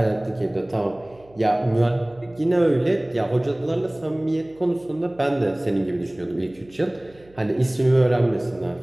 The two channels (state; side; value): noise; right; hum, 28 dB below the sound